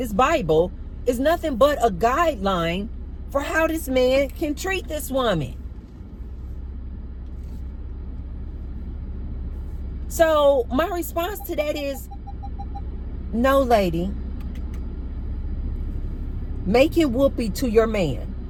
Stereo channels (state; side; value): identical; both; correlation 1.00